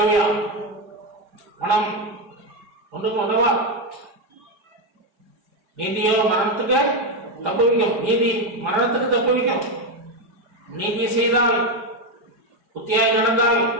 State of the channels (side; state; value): left; late; 4.9 ms